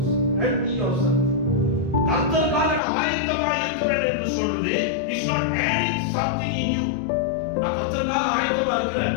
empty yourself. கர்த்தருக்காக நான் ஆயத்தமாக இருக்கிறேன் என்று சொல்றது is not adding something in you. நான் கர்த்தருக்காக ஆயத்தமா இருக்கிறேன்,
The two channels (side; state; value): right; drops out; at 2.8 s